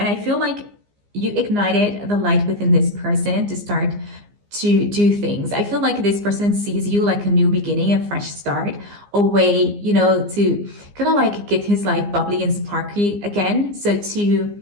I feel like you ignited the light within this person to start to do things. I feel like this person sees you like a new beginning, a fresh start, a way, to kind of like get his life bubbly and sparky again.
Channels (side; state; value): left; late; 15 ms